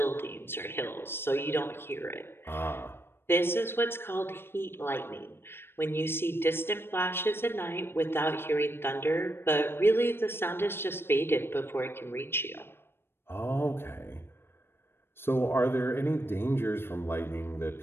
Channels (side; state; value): right; late; 0.11 ms